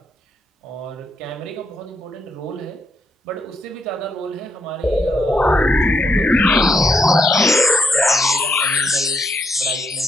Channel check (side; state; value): both; normal; correlation 0.77